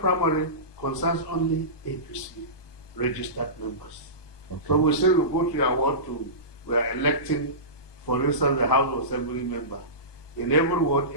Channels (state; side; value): late; right; 1.2 ms